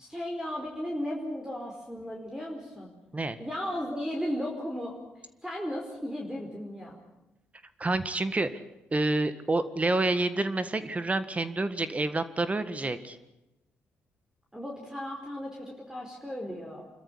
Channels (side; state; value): both; normal; correlation 0.85